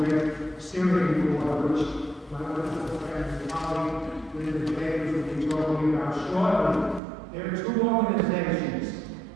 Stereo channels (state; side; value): drops out; left; at 7.0 s